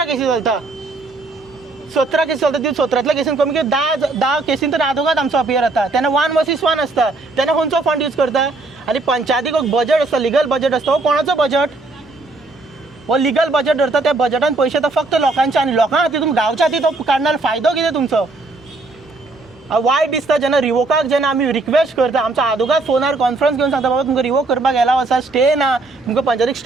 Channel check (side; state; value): left; quieter; 3.3 dB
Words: केसी चलता, 17 केसी चलता. ती 17तल्या केसीन कमी कमी 10 केसीन तर आदोगाद आमचो अपियर जाता. तेन्ना 1 वर्सीस 1 आसता, तेन्ना खंयचो फंड यूज करता. आनी पंचायतीक बजट आसता, लिगल बजट आसता. हो कोणाचो बजट, हो लिगल बजट धरता. त्या बजटान पयशे तर फक्त लोकांचे आनी लोकां खातीर तुमी गांवच्या खातीर तो काडणार फायदो कितें तुमचो. वायट दिसता जेन्ना रिवोकाक जेन्ना आमी रिक्वेस्ट करता, आमचो आदोगाद फोनार कॉन्फरन्स घेवन सांगता बाबा तुमकां रिवोक करपाक एलाव आसा, स्टे ना, तुमकां पंचायतीक